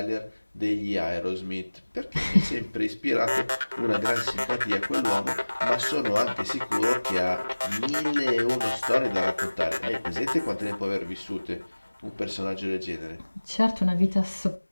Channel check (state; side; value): inverted; both; correlation -1.00